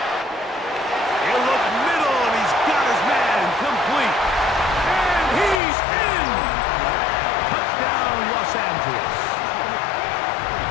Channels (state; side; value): drops out; right; at 5.6 s